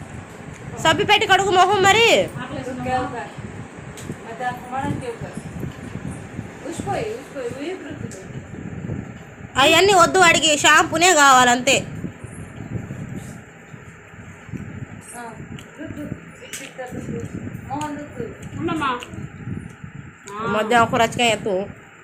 సబ్బి పెట్టి కడుగు మొహం మరి. అవన్నీ వద్దు, వాడికి షాంపూనే కావాలంతే. మధ్యాహ్నం ఒక రచకాయ ఎత్తు.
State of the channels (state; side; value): identical; both; correlation 1.00